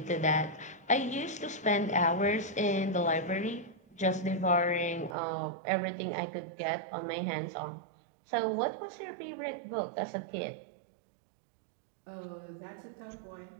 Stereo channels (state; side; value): drops out; left; at 5.2 s